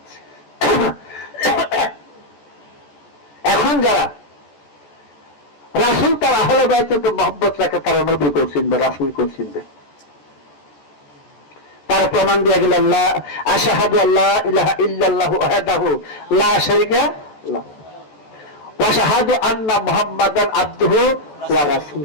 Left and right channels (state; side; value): late; right; 14 ms